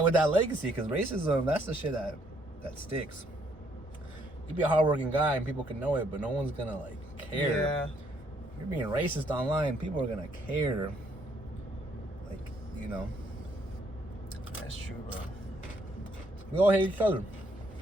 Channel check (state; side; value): normal; both; correlation 0.69